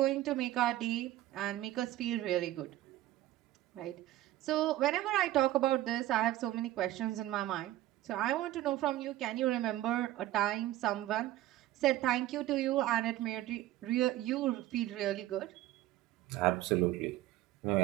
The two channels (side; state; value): left; quieter; 15.0 dB